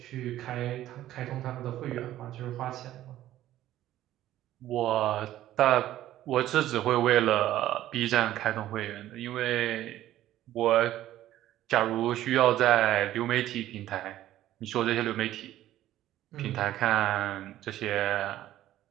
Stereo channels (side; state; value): left; quieter; 13.6 dB